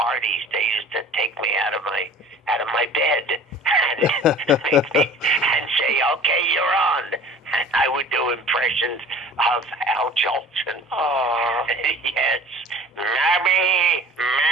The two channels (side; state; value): both; normal; correlation 0.44